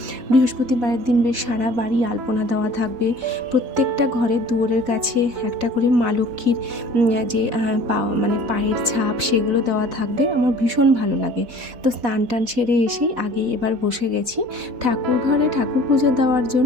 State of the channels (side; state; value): left; late; 4.1 ms